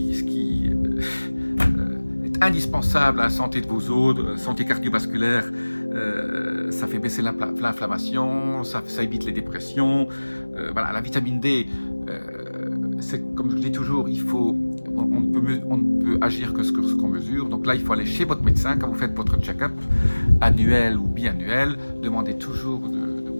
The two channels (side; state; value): both; inverted; correlation -1.00